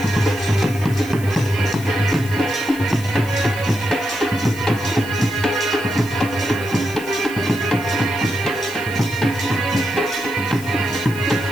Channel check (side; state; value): left; noise; hiss, 17 dB below the sound